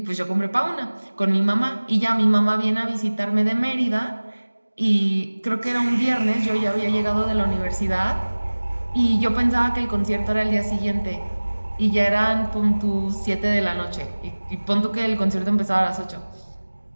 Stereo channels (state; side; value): inverted; both; correlation -1.00